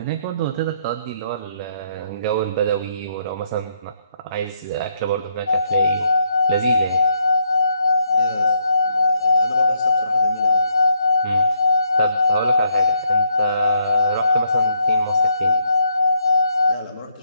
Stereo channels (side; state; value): both; inverted; correlation -0.74